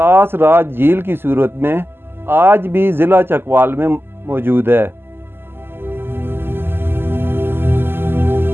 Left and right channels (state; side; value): late; left; 0.11 ms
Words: राज झील की सूरत में आज भी ज़िला चकवाल में मौजूद है।